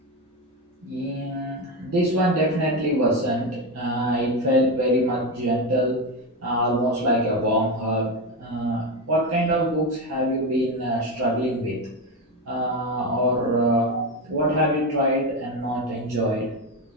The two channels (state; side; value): normal; both; correlation 0.15